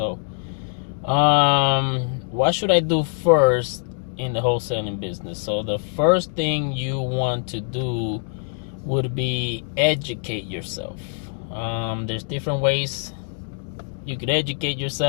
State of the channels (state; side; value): silent; right; digital silence